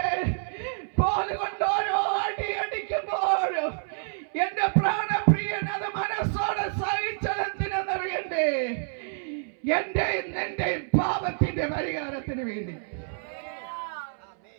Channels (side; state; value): left; silent; 59 dB below the other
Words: കോലുകൊണ്ട് ഓരോ അടി അടിക്കുമ്പോഴും എന്റെ പ്രാണപ്രിയൻ അത് മനസ്സോടെ സഹിച്ചതെന്തിനെന്നറിയണ്ടേ? എന്റെ നിന്റെ പാപത്തിന്റെ പരിഹാരത്തിന് വേണ്ടി.